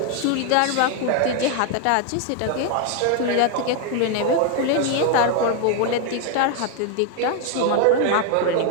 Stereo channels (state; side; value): different; both; correlation 0.01